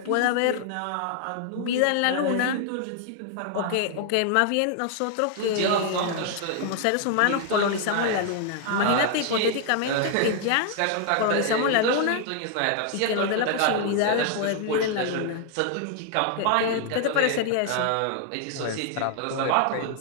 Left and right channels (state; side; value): different; both; correlation 0.00